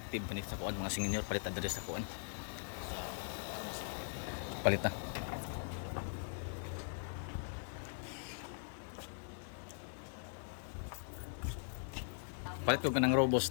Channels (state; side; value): silent; right; digital silence